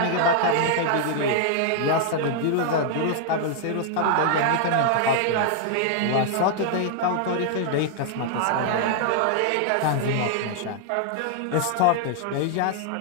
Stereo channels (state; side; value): different; both; correlation -0.01